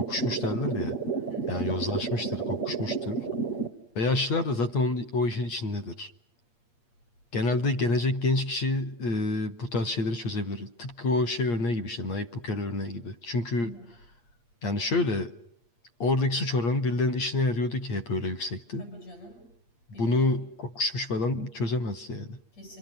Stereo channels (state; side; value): late; right; 8.5 ms